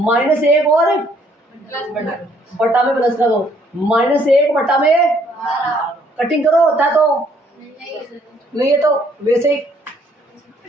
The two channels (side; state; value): both; normal; correlation 0.65